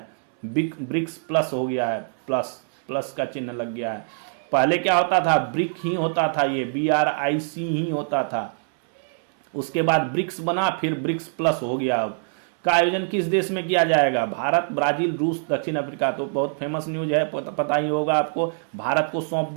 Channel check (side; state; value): left; silent; 63 dB below the other